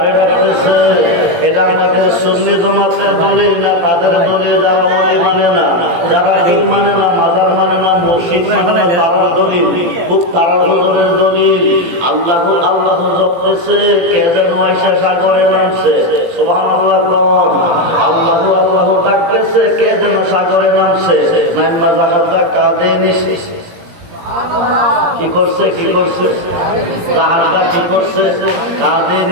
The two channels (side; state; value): left; late; 17 ms